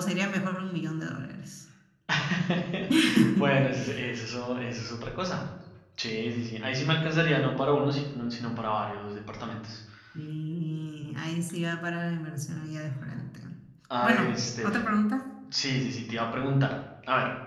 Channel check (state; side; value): identical; both; correlation 1.00